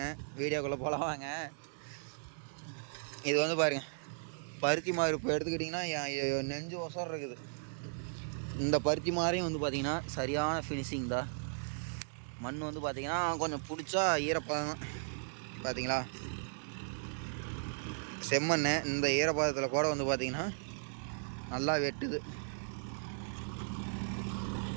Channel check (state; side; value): silent; left; digital silence